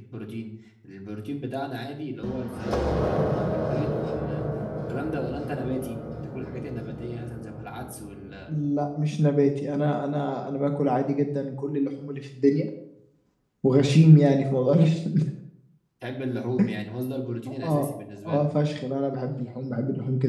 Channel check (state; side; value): identical; both; correlation 1.00